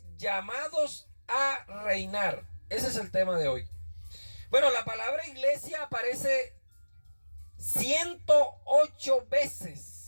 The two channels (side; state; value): both; inverted; correlation -1.00